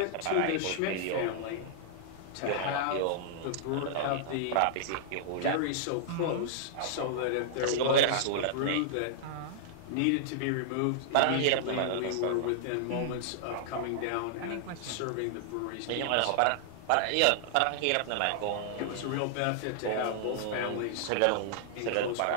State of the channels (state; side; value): different; both; correlation -0.01